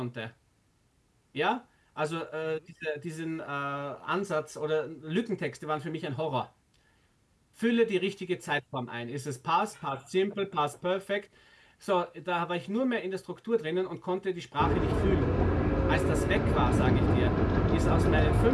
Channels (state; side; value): identical; both; correlation 1.00